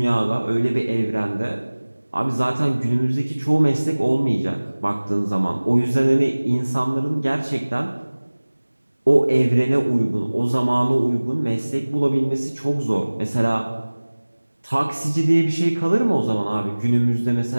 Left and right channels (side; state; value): both; inverted; correlation -1.00